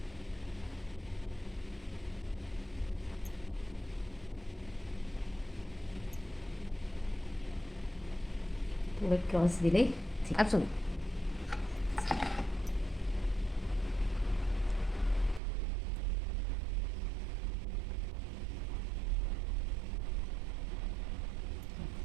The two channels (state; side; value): drops out; left; at 15.4 s